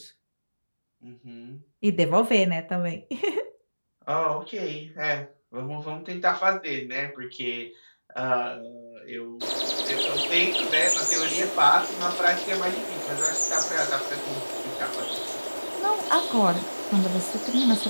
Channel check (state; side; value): inverted; both; correlation -1.00